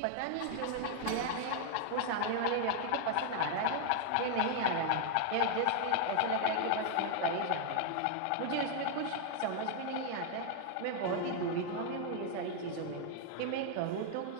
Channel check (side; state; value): both; different; correlation 0.00